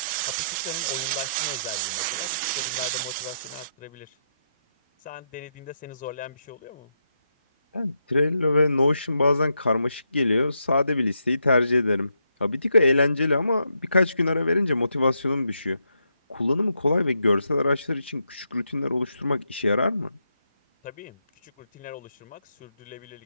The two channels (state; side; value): inverted; both; correlation -0.80